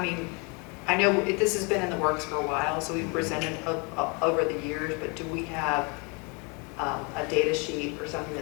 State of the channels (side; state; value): right; quieter; 31.8 dB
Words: I know this has been in the works for a while, so we've presented over the years, but do we have a data sheet or something